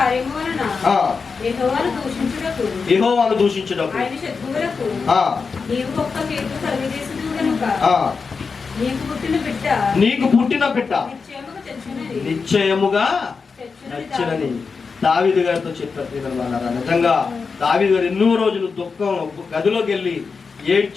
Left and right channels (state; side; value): quieter; right; 5.0 dB